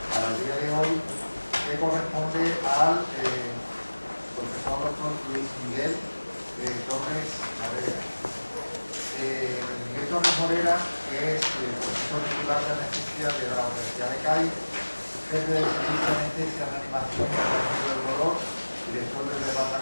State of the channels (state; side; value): inverted; both; correlation -1.00